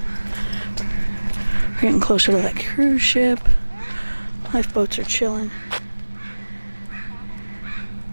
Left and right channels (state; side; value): inverted; both; correlation -1.00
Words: We're getting closer to that cruise ship. Lifeboats are chilling.